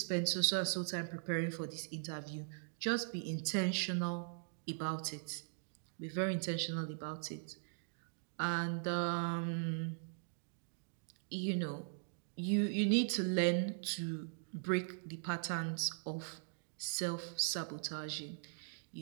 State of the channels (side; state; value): left; silent; digital silence